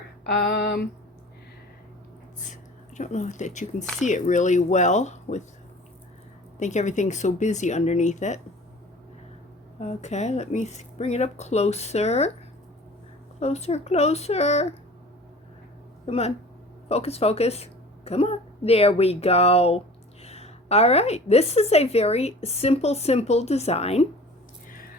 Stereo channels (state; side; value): normal; both; correlation 0.43